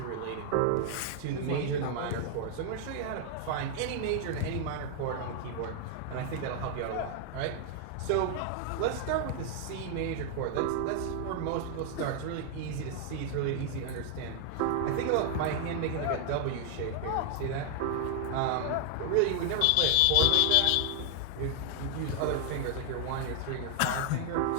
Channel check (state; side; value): different; both; correlation 0.00